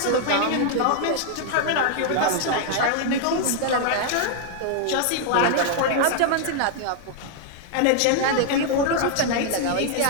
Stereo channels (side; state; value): both; different; correlation 0.00